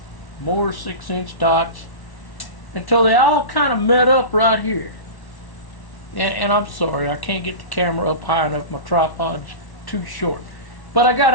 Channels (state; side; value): late; right; 1.1 ms